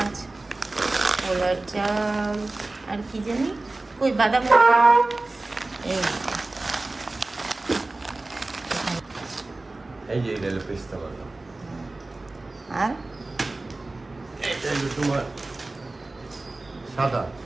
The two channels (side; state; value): left; quieter; 3.1 dB